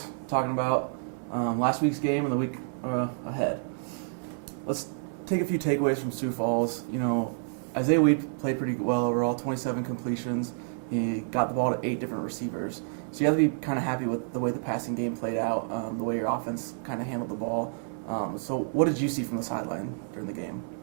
talking about last week's game and the week ahead. Let's take a few takeaways from Sioux Falls. Isaiah Wade played pretty well overall, 27 completions. He got the ball to 8 different receivers. So you have to be kind of happy with the way the passing game played out, the way your offense kind of handled the ball. So what did you see from the sideline during the game?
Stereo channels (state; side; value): silent; left; 58 dB below the other